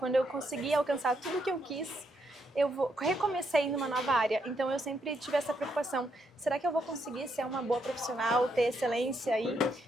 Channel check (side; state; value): both; normal; correlation 0.78